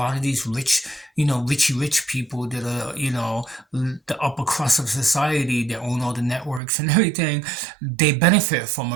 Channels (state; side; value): drops out; left; at 6.6 s